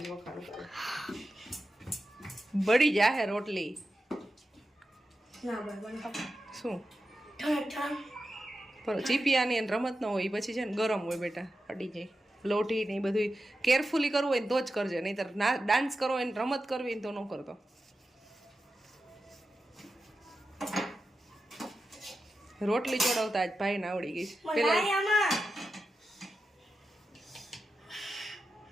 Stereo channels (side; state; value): both; normal; correlation 0.91